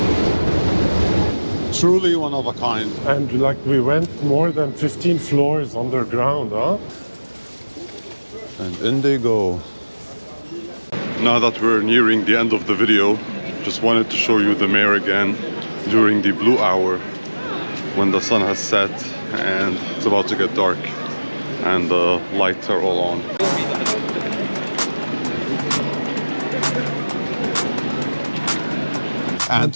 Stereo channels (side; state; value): both; inverted; correlation -1.00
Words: Truly one of a kind. And like we went more than 15 floors underground, huh? And in they go. Now that we're nearing the end of the video, just wanted to show you the Meir again during the blue hour when the sun has set and it's about to get dark. And the lights are all on.